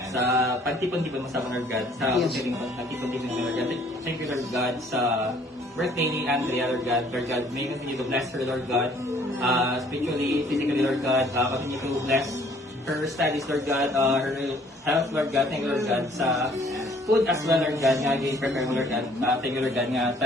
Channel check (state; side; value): normal; both; correlation 0.59